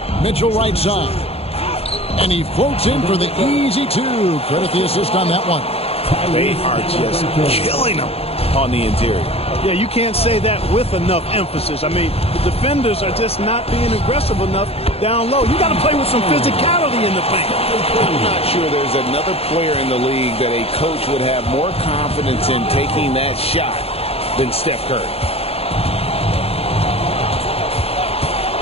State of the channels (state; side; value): late; right; 0.29 ms